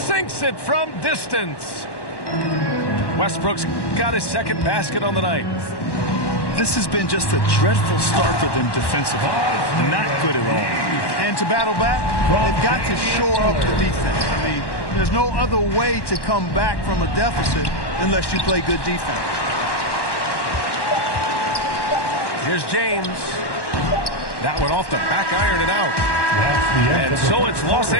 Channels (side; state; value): right; late; 1.1 ms